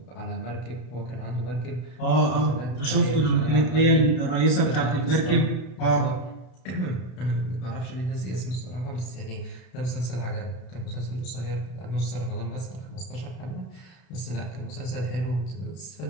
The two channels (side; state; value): right; late; 32 ms